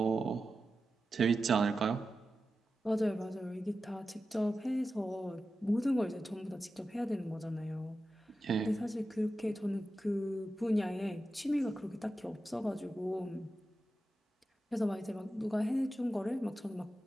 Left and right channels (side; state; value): both; normal; correlation 0.92